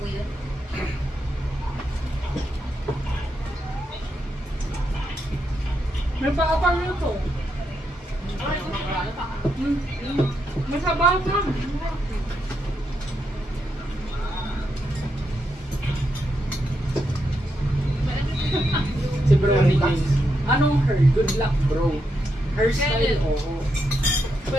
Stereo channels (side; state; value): both; normal; correlation 0.82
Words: yun? May paapang nyo to. Masabaw ka. Si Bro ni James. Anong her? Good luck, bro. Hairstyle, oo.